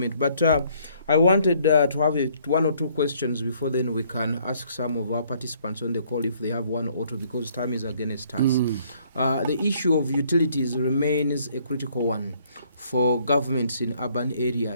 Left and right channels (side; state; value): both; inverted; correlation -0.64